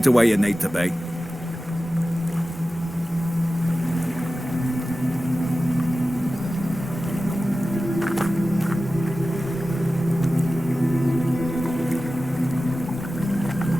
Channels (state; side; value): normal; both; correlation 0.95